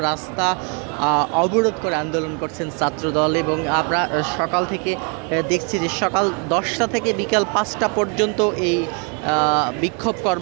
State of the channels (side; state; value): left; quieter; 36.4 dB